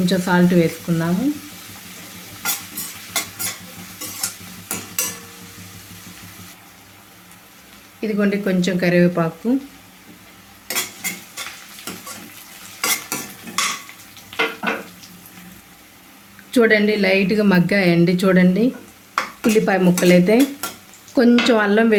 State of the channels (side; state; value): both; identical; correlation 1.00